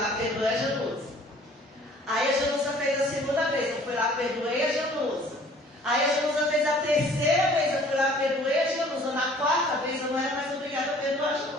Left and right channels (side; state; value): both; normal; correlation 0.53